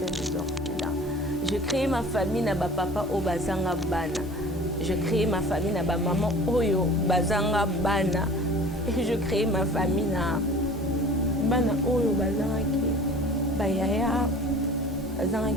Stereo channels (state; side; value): normal; both; correlation 0.44